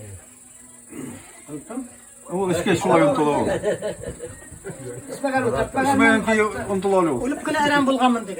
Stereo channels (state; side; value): identical; both; correlation 1.00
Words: O işke şolay untulav. İsmayanki untulav yok. Ölüp kına aram bulgamın